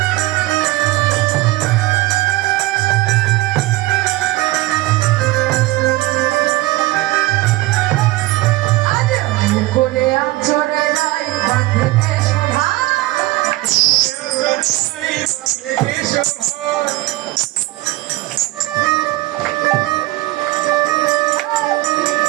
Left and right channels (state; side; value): quieter; left; 18.3 dB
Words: করে আচরে নাই বাঁধতে শোভা